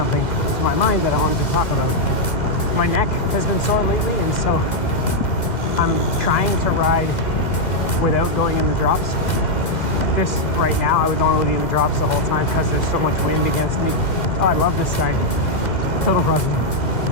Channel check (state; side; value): late; right; 2.1 ms